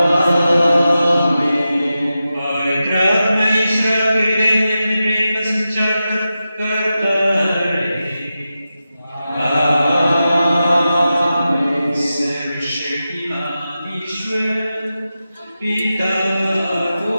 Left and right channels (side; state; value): both; inverted; correlation -0.91